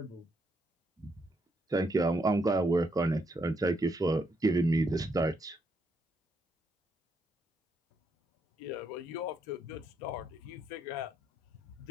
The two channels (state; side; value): normal; both; correlation 0.76